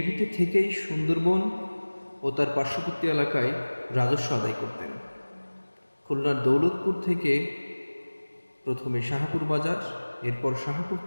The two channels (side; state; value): both; inverted; correlation -1.00